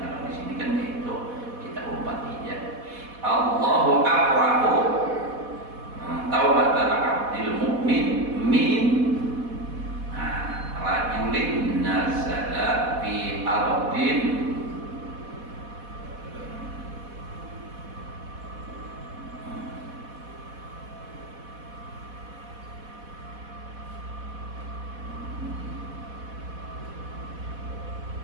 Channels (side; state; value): left; late; 4.1 ms